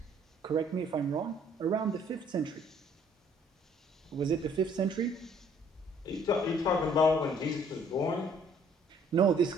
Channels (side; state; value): both; normal; correlation 0.60